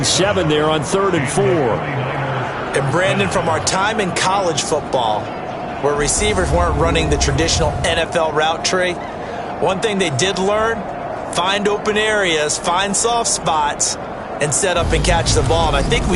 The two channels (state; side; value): identical; both; correlation 1.00